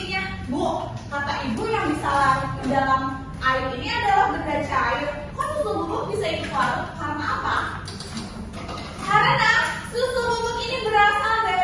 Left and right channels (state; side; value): identical; both; correlation 1.00